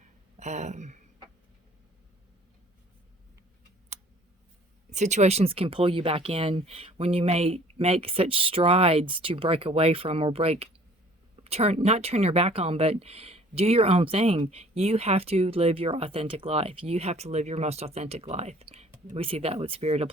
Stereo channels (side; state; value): both; normal; correlation 0.53